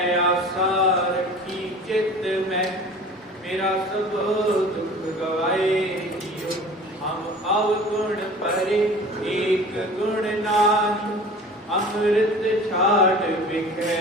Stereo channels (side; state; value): both; normal; correlation 0.42